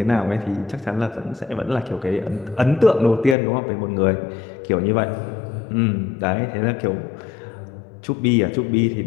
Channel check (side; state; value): right; drops out; at 3.4 s